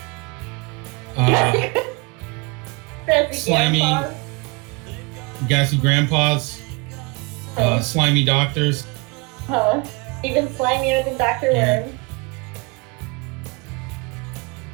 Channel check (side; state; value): left; quieter; 28.3 dB